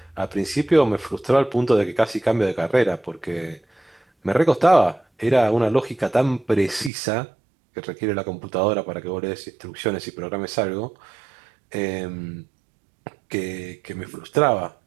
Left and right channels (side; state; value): left; drops out; at 6.9 s